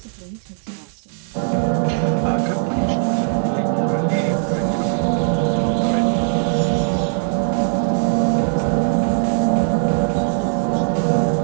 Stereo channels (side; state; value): left; silent; digital silence